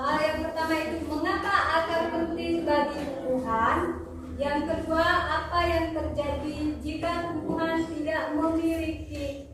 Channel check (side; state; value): both; identical; correlation 1.00